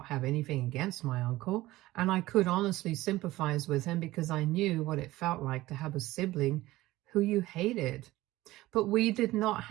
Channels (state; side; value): quieter; left; 17.5 dB